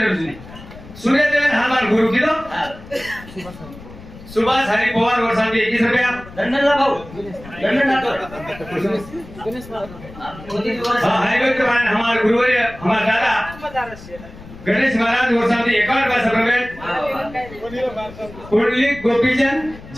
सूर्य जयंती हनुमान गुरु की दो सुभाष हरी पवार वर्षांती 21 रुपया लंडनला भाऊ लंडन जातो मोदी दिवस हाईवे के बाद हमारे गुरुवर्य हमारे दादा गणेश महाराज वर्षांती 51 पैसा प्रवेश कुंडली गोपीचंद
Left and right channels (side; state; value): left; noise; rumble, 17 dB below the sound